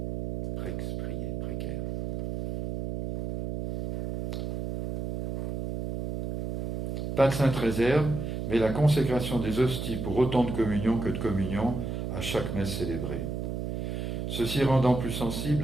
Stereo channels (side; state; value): right; noise; hum, 4 dB below the sound